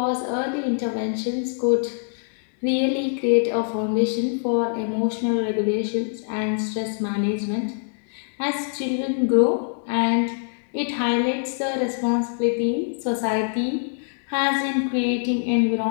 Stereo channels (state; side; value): silent; right; 63 dB below the other